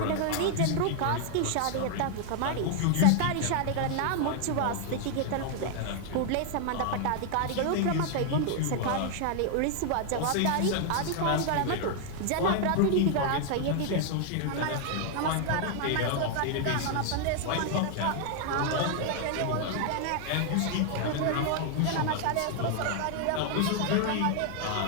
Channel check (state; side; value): different; both; correlation 0.00